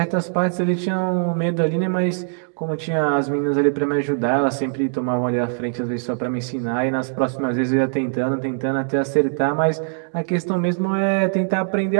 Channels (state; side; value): silent; left; digital silence